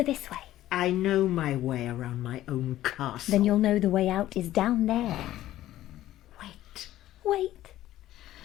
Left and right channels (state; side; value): quieter; right; 14.0 dB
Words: this way. I know my way around my own castle. Then you'll know the way out is down there. Wait.